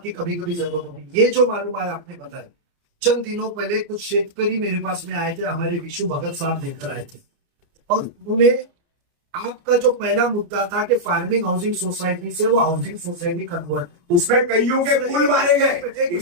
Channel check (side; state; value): left; late; 29 ms